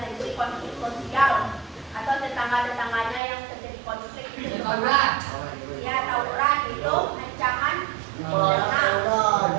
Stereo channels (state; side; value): drops out; left; at 3.2 s